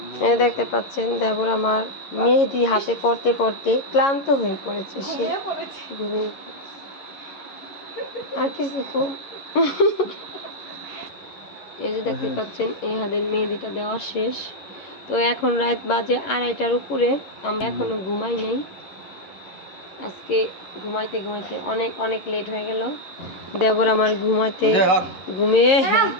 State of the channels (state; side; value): late; right; 11 ms